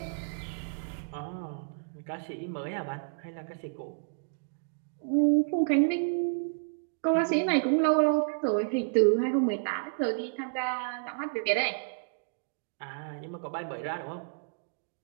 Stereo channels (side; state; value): left; silent; digital silence